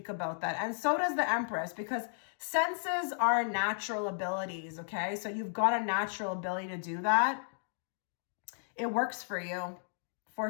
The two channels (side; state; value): right; silent; digital silence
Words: about that. And so does the Empress, because senses are natural abilities, okay? So you've got a natural ability to do that. It works for you, for